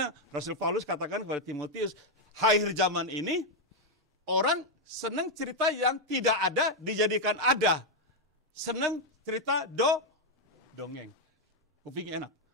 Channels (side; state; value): both; normal; correlation 0.01